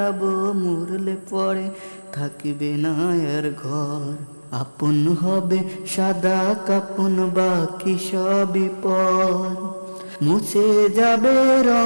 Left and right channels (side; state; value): both; inverted; correlation -1.00